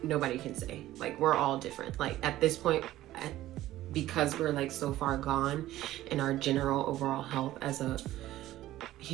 nobody can say. Like, we're all different. Like, at this point, because we're like so far gone in our general overall health as a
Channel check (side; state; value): left; quieter; 14.8 dB